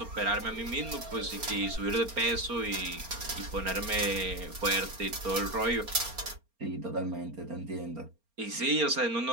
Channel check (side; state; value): left; late; 4.3 ms